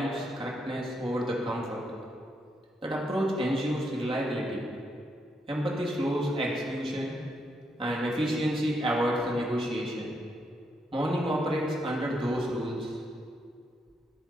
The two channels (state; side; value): normal; both; correlation 0.79